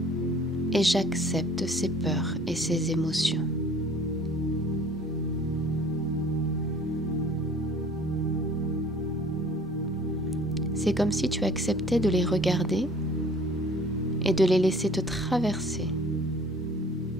et j'accepte ces peurs et ces émotions. C'est comme si tu acceptais de les regarder et de les laisser te traverser.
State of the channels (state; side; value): normal; both; correlation 0.51